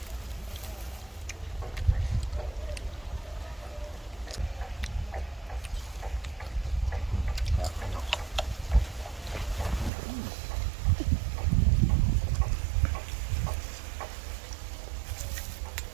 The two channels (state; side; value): drops out; left; at 9.9 s